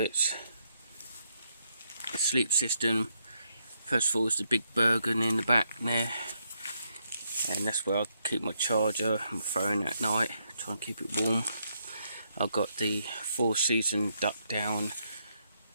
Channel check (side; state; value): both; inverted; correlation -0.78